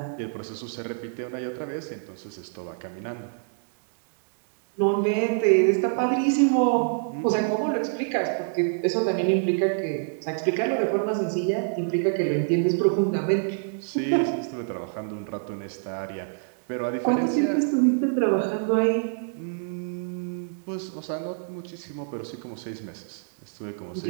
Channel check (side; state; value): left; silent; digital silence